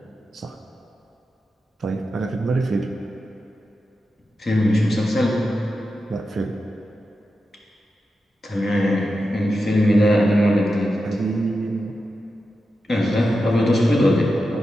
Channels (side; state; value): both; normal; correlation 0.90